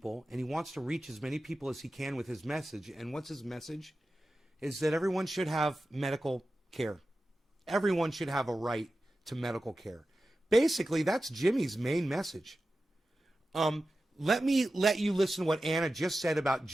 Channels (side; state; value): both; normal; correlation 0.93